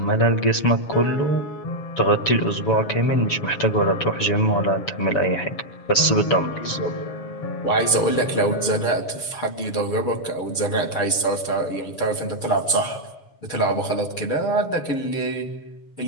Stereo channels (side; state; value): right; late; 7.2 ms